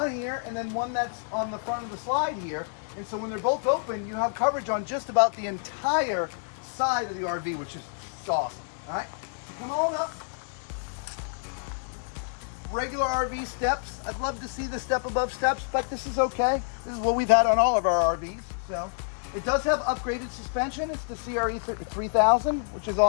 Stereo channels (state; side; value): silent; right; 58 dB below the other